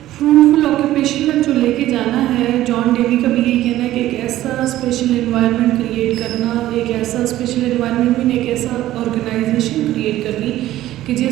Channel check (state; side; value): quieter; left; 14.5 dB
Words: ऑक्यूपेशन तक जो लेके जाना है। जॉन डेवी का भी यही कहना है कि एक ऐसा स्पेशल एनवायरनमेंट क्रिएट करना, एक ऐसा स्पेशल एनवायरनमेंट में एक ऐसा ऑर्गेनाइजेशन क्रिएट करनी कि